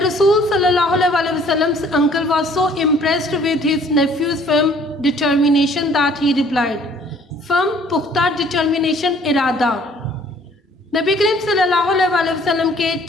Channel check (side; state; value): both; normal; correlation 0.57